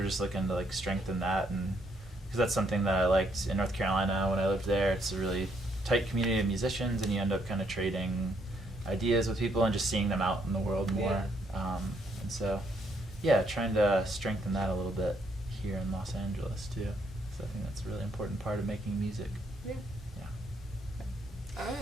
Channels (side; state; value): both; normal; correlation 0.72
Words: just looking to like strengthen that, and because that's something that I liked in North Carolina when I lived there. It's a really tight community of musicians, and you end up kind of trading ideas with people and just seeing them out in the world more. And so trying to strengthen that a little bit here in Los Angeles too. So I think that's a really important part of making music. All